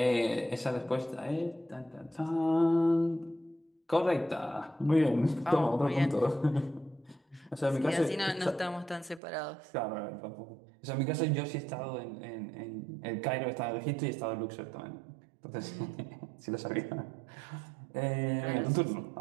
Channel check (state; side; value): drops out; left; at 9.2 s